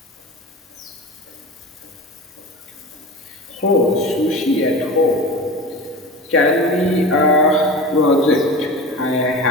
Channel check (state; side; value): normal; both; correlation 0.32